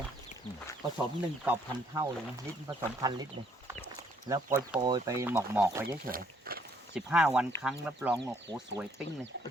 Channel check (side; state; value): both; normal; correlation 0.67